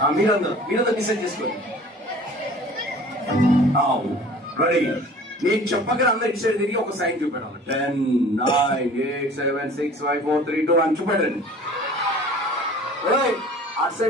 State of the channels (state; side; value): normal; both; correlation 0.46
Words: మీరందరూ డిసైడ్ చేసుకోండి. రెడీ? నేను చెప్పగానే అందరు డిసైడ్ తిరిగి ఒక సైన్ చూపెట్టాలి. 10, 9, 8, 7, 6, 5, 4, 3, 2 అని చూపెట్టండి. అటు